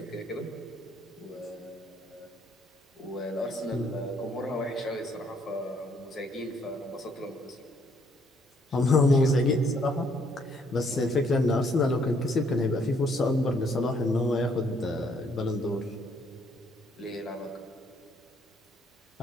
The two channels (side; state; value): both; normal; correlation 0.68